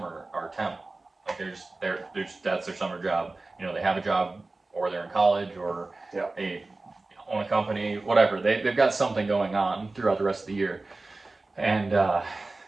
are temp. Like there's that's their summer job. They have a job or they're in college or they own a company, whatever. They've got something going on throughout the rest of the year, and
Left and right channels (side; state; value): left; quieter; 3.3 dB